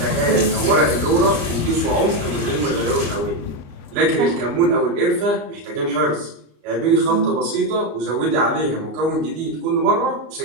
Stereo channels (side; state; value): left; late; 34 ms